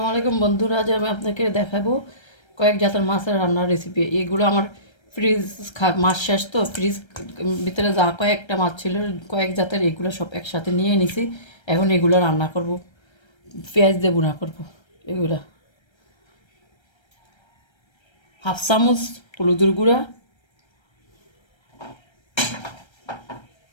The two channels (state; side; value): late; right; 1.3 ms